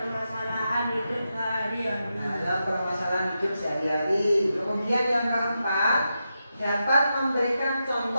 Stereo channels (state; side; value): inverted; both; correlation -0.88